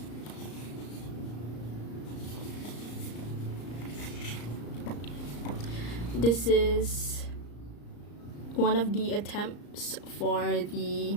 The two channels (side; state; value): right; late; 34 ms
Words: This is one of the attempts for the